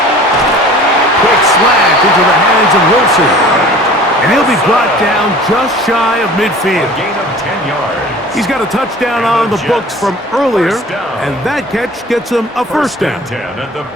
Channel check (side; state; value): both; normal; correlation 0.45